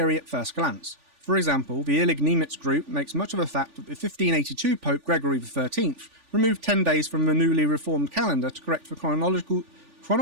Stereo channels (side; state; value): left; late; 3.4 ms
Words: at first glance. For example, the Illig-Niemitz group makes much of the fact that the 1582 Pope Gregory XIII removed 10 days from the newly reformed calendar to correct the